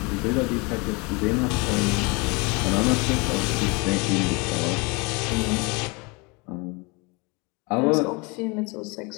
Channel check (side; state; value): right; quieter; 28.4 dB